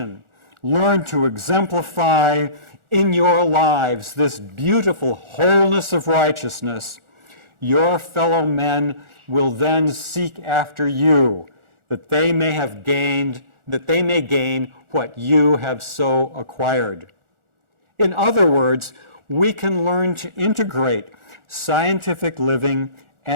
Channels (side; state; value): left; late; 1.4 ms